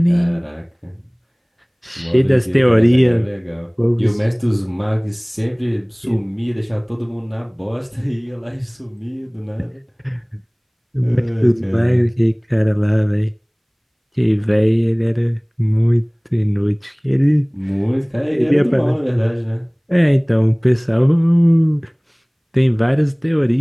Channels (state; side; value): identical; both; correlation 1.00